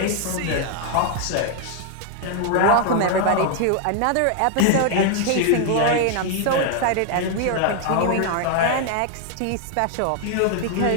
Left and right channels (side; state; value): both; different; correlation 0.00